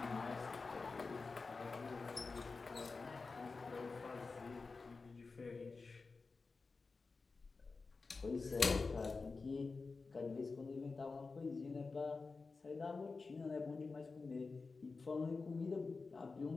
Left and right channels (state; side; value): quieter; right; 4.2 dB